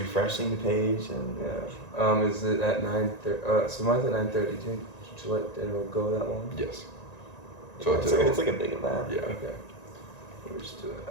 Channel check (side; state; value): right; late; 1.9 ms